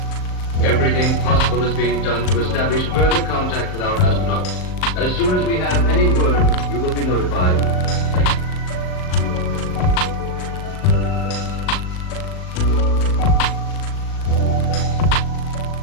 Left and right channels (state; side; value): late; right; 38 ms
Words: Everything possible is being done to establish further contact with our astronauts. As soon as we have any word, you will be notified. Thank you.